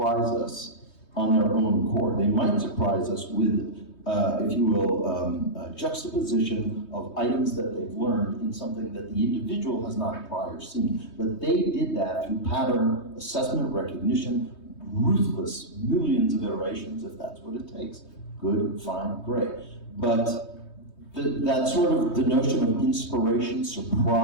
us on their own accord. They might surprise us with, if you will, a juxtaposition of items that they've learned in something that the individual has not prior seen. But they did that through pattern assessment, recognition, ruthless millions of iterations, if that's what it takes. Good, fine, great. But that sort of, the notion of inspiration,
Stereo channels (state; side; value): late; right; 3.2 ms